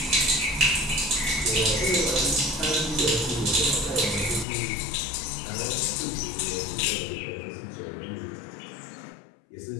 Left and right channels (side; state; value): right; drops out; at 4.5 s